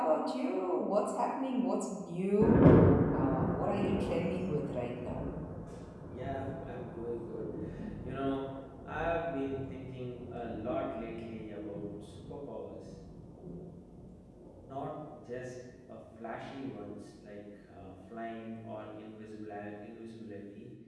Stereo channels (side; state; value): both; identical; correlation 1.00